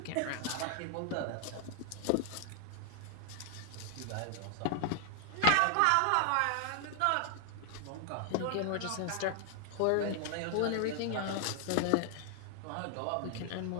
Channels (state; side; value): different; both; correlation 0.00